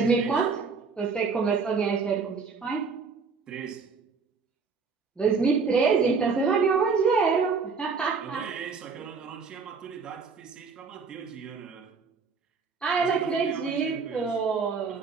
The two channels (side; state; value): left; quieter; 5.1 dB